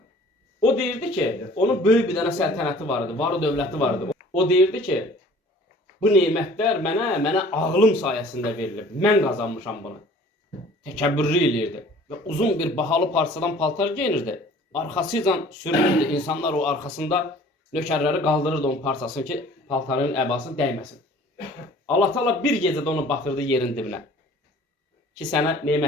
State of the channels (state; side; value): normal; both; correlation 0.50